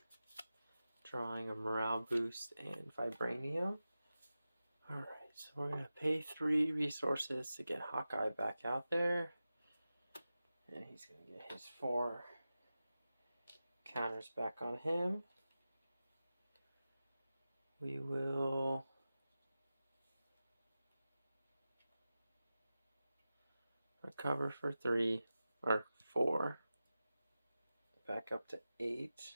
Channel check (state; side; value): inverted; both; correlation -0.94